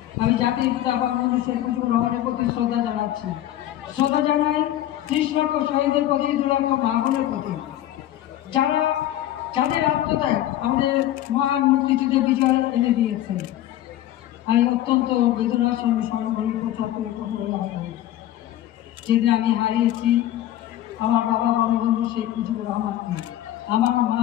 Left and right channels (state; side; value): quieter; right; 13.1 dB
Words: আমি জাতির পিতা বঙ্গবন্ধু শেখ মুজিবুর রহমানের প্রতি শ্রদ্ধা জানাচ্ছি। শ্রদ্ধা জানাই 30 লক্ষ শহীদের প্রতি, 2 লক্ষ মা বোনের প্রতি, যাদের আত্মত্যাগ আমাদের মহান মুক্তিযুদ্ধে বিজয় এনে দিয়েছে। আমি অত্যন্ত বেদনার সঙ্গে স্মরণ করি 75 বছর যেদিন আমি হারিয়েছি আমার বাবা বঙ্গবন্ধু শেখ মুজিবুর রহমানকে, আমার মা